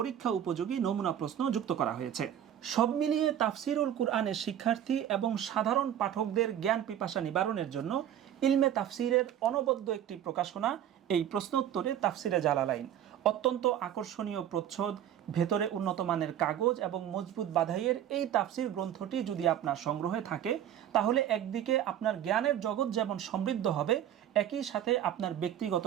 উপযোগী নমুনা প্রশ্ন যুক্ত করা হয়েছে। সব মিলিয়ে তাফসিরুল কুরআনের শিক্ষার্থী এবং সাধারণ পাঠকদের জ্ঞান পিপাসা নিবারণের জন্য ইলমে তাফসিরের অনবদ্য একটি প্রকাশনা এই প্রশ্নোত্তরে তাফসিরে জালালাইন। অত্যন্ত আকর্ষণীয় প্রচ্ছদ, ভেতরে উন্নত মানের কাগজ এবং মজবুত বাধাইয়ের এই তাফসির গ্রন্থটি যদি আপনার সংগ্রহে থাকে, তাহলে একদিকে আপনার জ্ঞানের জগৎ যেমন সমৃদ্ধ হবে, একই সাথে আপনার ব্যক্তিগত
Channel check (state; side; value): quieter; left; 10.6 dB